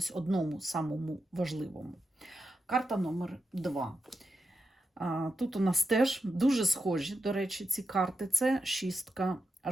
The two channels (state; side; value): normal; both; correlation 0.88